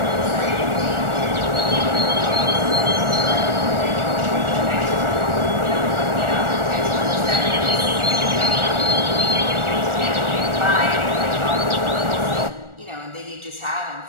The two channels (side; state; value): left; late; 1.4 ms